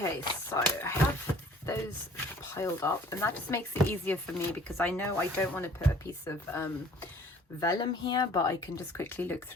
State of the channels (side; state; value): both; normal; correlation 0.53